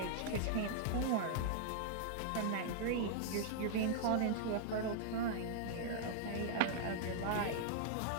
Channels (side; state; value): both; different; correlation -0.01